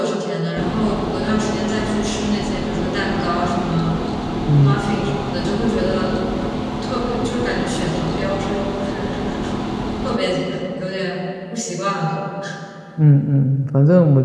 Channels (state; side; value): identical; both; correlation 1.00